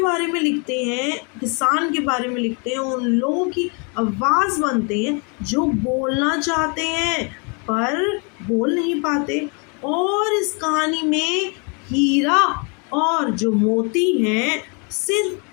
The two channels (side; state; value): right; quieter; 34.9 dB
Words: में लिखते हैं, किसान के बारे में लिखते हैं, उन लोगों की आवाज़ बनते हैं जो बोलना चाहते हैं पर बोल नहीं पाते। और इस कहानी में हीरा और जो मोती हैं